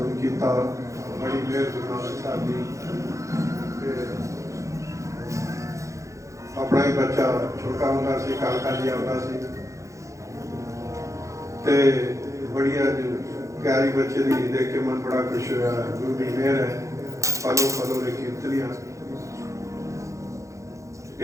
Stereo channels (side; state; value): left; late; 0.15 ms